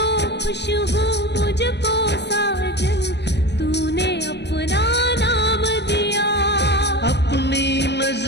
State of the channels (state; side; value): late; right; 0.50 ms